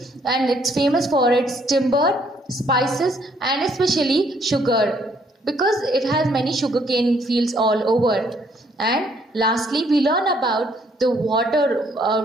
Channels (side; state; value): both; normal; correlation 0.67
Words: and it's famous for its timber, spices and especially sugar, because it has many sugarcane fields all over. And lastly, we learn about the